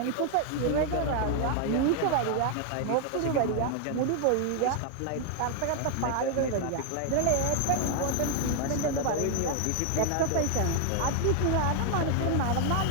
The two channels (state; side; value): different; both; correlation 0.00